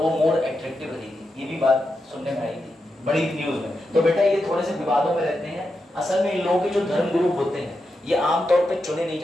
वो मोर अट्रैक्टिव रहेगी। ये भी बात सुनने में आई थी बड़ी न्यूज में। तो बेटा ये थोड़े से विवादों में रहते हैं। असल में इन लोगों के जो धर्मगुरु होते हैं ये आमतौर पे चुने नहीं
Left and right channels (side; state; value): both; normal; correlation 0.87